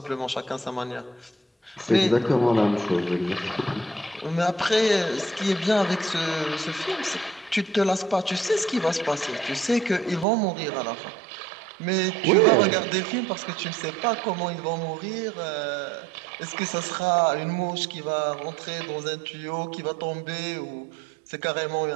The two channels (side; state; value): left; drops out; at 10.2 s